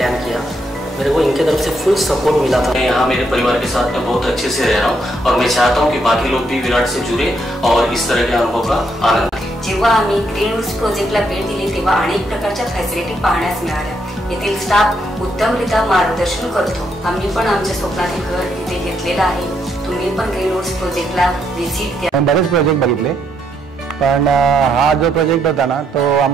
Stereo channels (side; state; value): both; normal; correlation 0.76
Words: किया, मेरे को इनके तरफ से फुल सपोर्ट मिला था। मैं यहाँ मेरे परिवार के साथ में बहुत अच्छे से रह रहा हूँ और मैं चाहता हूँ कि बाकी लोग भी विराट से जुड़े और इस तरह के अनुभव का आनंद। जेव्हा आम्ही ग्रीन रूट्स प्रोजेक्टला भेट दिली तेव्हा अनेक प्रकारच्या फॅसिलिटी पाहण्यास मिळाल्या। येथील स्टाफ उत्तमरित्या मार्गदर्शन करतो। आम्ही पण आमच्या स्वप्नातील घर इथे घेतलेलं आहे। तुम्ही पण ग्रीन रूट्स प्रोजेक्टला व्हिजिट द्या। बरेच प्रोजेक्ट बघितले पण हा जो प्रोजेक्ट होता ना तो